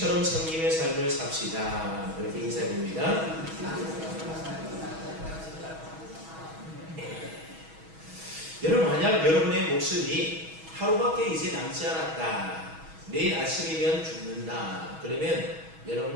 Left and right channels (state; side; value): late; left; 6.2 ms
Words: 섬김의 삶을 삽시다. 그렇게 인사드립니다. 여러분, 만약 여러분의 목숨이 하루밖에 이제 남지 않았다, 내일 아침이면 죽는다, 그러면